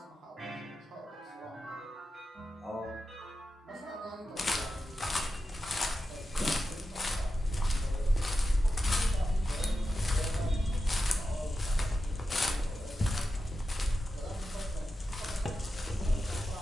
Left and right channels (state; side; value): normal; both; correlation 0.91